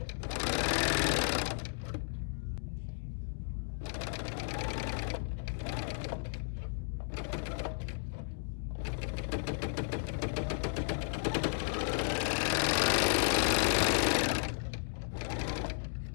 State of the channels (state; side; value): silent; right; digital silence